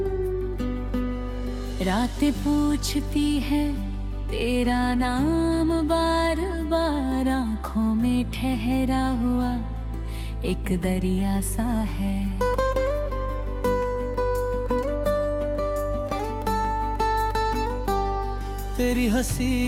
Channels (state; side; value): identical; both; correlation 1.00